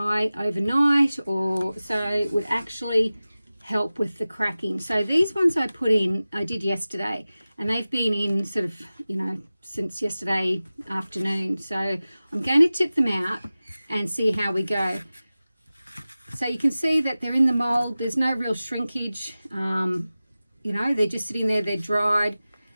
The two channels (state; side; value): inverted; both; correlation -0.96